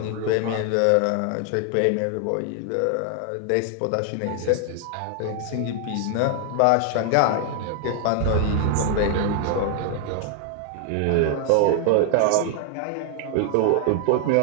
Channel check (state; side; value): different; both; correlation 0.00